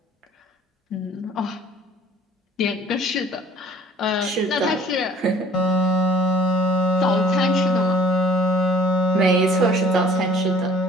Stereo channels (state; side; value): normal; both; correlation 0.54